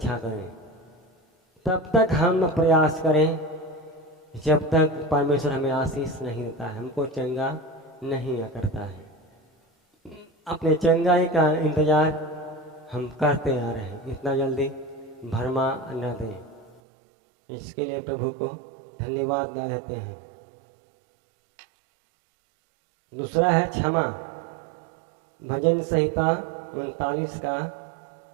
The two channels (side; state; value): left; drops out; at 16.8 s